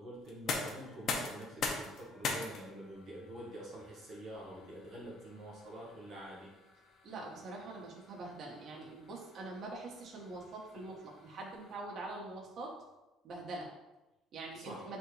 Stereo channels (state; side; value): normal; both; correlation 0.59